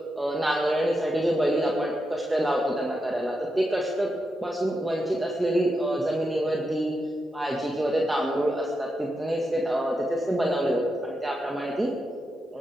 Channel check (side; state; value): both; normal; correlation 0.86